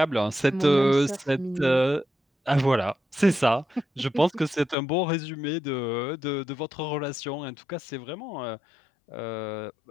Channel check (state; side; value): drops out; right; at 4.8 s